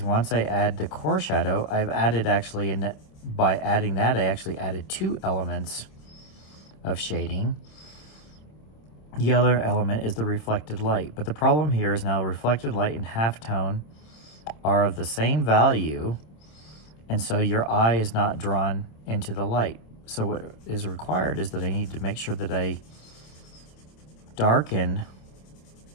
I add the core shadow, I've added actually, by adding that, I actually added two elements of shading. The other element is the reflected light. But the problem here is now reflected light and halftone are of the same value, and so your eye is not drawn into the light. So what is required is that I need to make sure that I darken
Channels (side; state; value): right; late; 27 ms